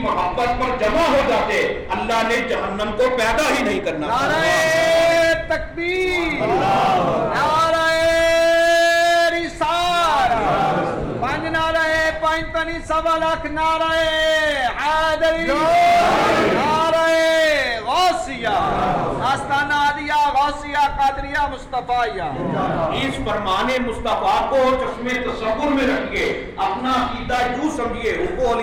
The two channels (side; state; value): both; identical; correlation 1.00